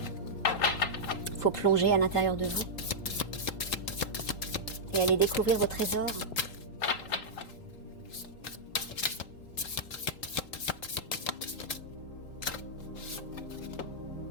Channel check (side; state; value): right; late; 3.8 ms